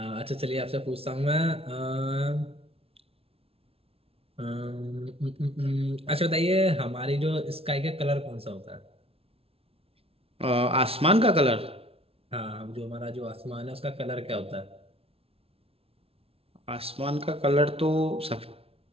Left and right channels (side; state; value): left; late; 0.28 ms